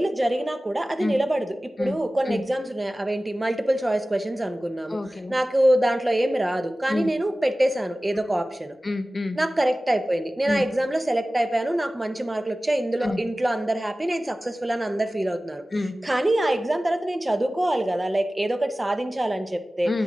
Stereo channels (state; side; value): normal; both; correlation 0.97